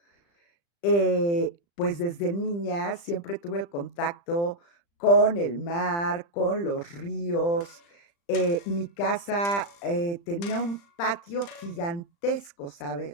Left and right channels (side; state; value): right; late; 35 ms